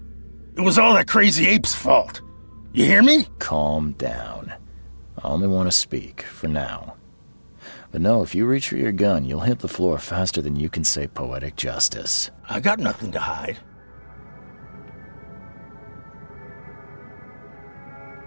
It was all that crazy ape's fault. You hear me? Calm down. I only want to speak, for now. But no, if you reach for your gun, you'll hit the floor faster than you can say poetic justice. I got nothing to hide.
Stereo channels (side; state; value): both; inverted; correlation -1.00